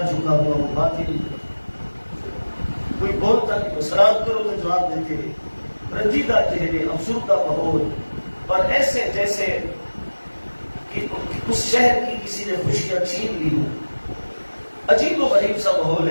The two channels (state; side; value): inverted; both; correlation -1.00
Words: جھکا ہوا وہ بات ہی نہیں کرتا، کوئی بولتا نہیں، سلام کرو تو جواب دیتے ہیں، رنجیدہ چہرے، افسردہ ماحول، اور ایسے جیسے کہ اس شہر کی کسی نے خوشیاں چھین لی ہوں۔ عجیب و غریب سا ماحول